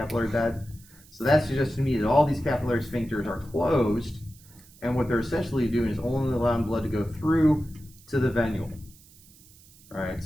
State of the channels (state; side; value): noise; right; hiss, 25 dB below the sound